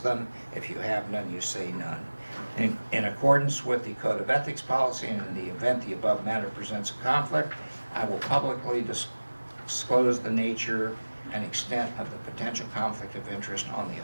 them. If you have none, you say none. In accordance with the Code of Ethics policy, and in the event the above matter presents a conflict, I will publicly disclose the nature and extent of the potential conflict of interest on the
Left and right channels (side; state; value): both; inverted; correlation -1.00